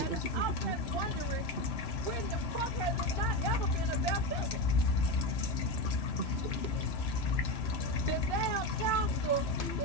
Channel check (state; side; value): late; right; 3.0 ms